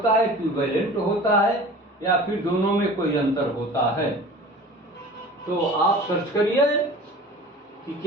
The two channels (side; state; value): both; normal; correlation 0.40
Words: है, इक्विवेलेंट होता है या फिर दोनों में कोई अंतर होता है? तो आप सर्च करिए कि